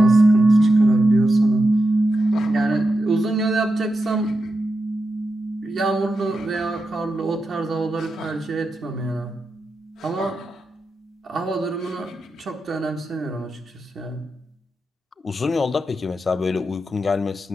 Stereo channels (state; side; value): normal; both; correlation 0.88